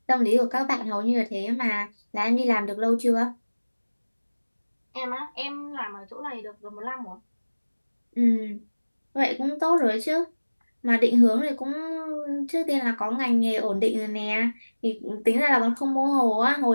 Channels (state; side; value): inverted; both; correlation -1.00